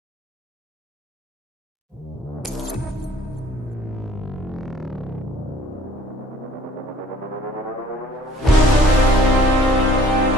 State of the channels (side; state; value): both; normal; correlation 0.54